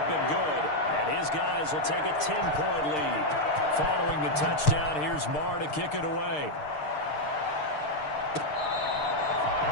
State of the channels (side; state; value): right; late; 6.6 ms